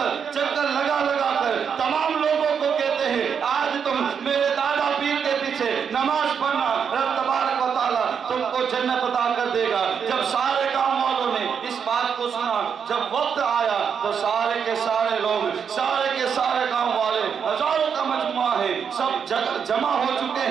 چکر لگا کر تمام لوگوں کو کہتے ہیں آج تم میرے دادا پیر کے پیچھے نماز پڑھنا، رب تبارک و تعالیٰ تم کو جنت عطا کر دے گا۔ جب سارے گاؤں والوں نے اس بات کو سنا، جب وقت آیا تو سارے کے سارے لوگ، سارے کے سارے گاؤں والے، ہزاروں کا مجموعہ ہے، سب جمع ہو چکے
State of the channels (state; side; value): quieter; left; 7.0 dB